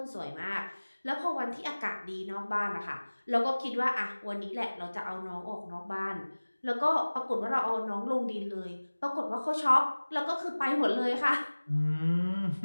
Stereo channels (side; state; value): both; inverted; correlation -1.00